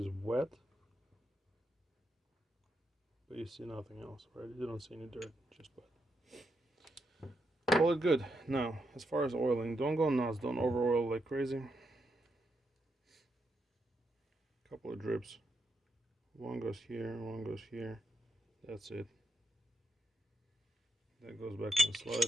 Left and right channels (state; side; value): normal; both; correlation 0.81